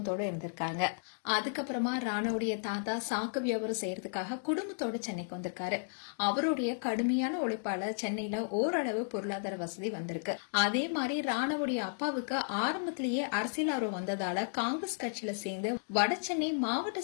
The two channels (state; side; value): silent; right; digital silence